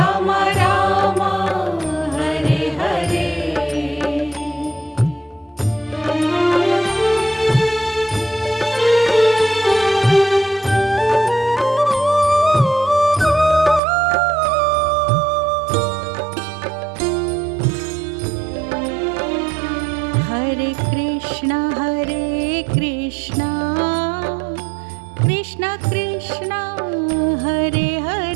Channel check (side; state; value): left; drops out; at 13.8 s